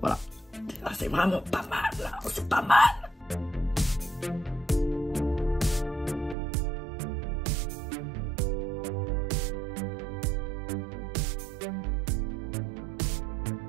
Ah, c'est vraiment pas mal, là. C'est pas mal.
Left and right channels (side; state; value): left; drops out; at 6.4 s